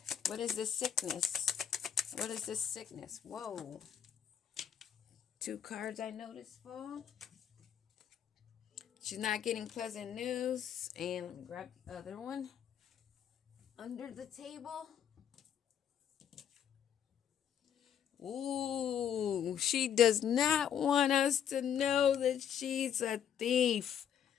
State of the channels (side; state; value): right; quieter; 9.0 dB